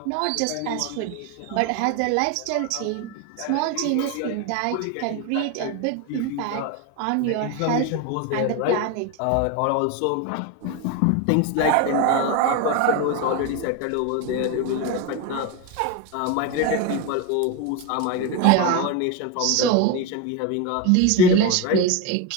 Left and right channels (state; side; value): different; both; correlation 0.02